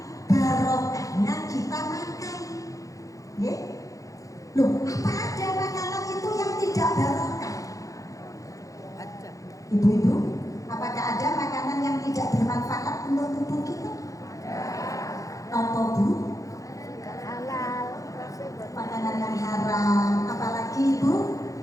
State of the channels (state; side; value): late; right; 0.16 ms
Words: Loh, apa ada makanan itu yang tidak barokah? Ibu-ibu, apakah ada makanan yang tidak bermanfaat untuk tubuh kita? Nopo bu? Halal. Makanan yang haram, apalagi ibu?